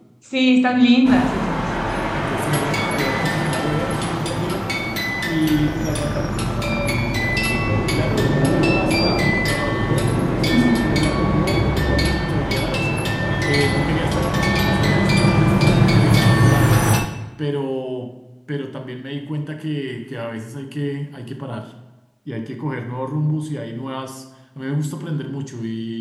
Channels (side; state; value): both; identical; correlation 1.00